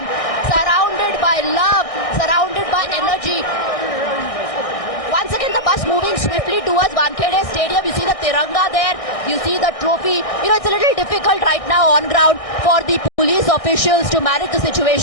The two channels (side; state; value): right; late; 1.6 ms